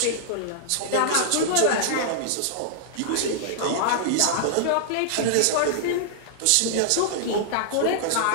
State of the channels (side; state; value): both; different; correlation -0.01